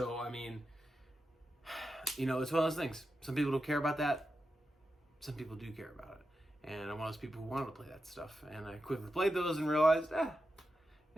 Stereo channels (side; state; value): both; normal; correlation 0.89